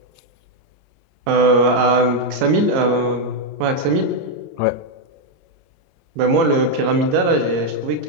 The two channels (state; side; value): late; left; 30 ms